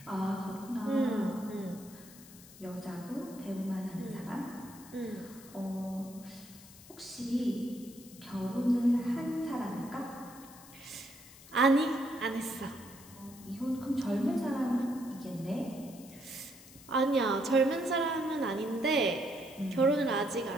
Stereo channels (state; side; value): noise; left; hiss, 19 dB below the sound